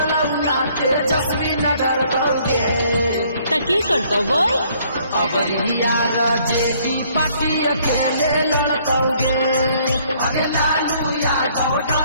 ना तेजस्वी न डरलौगे त की करता बोल अब यार जेडी पार्टी अकेले लड़कौगे अगे लालू यादव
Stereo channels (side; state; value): both; inverted; correlation -0.63